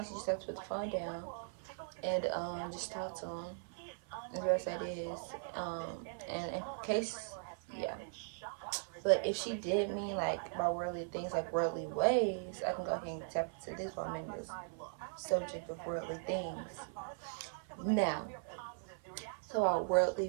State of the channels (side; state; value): left; silent; 52 dB below the other